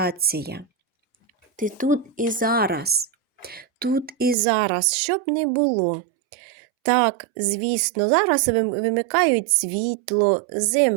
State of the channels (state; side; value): drops out; left; at 4.4 s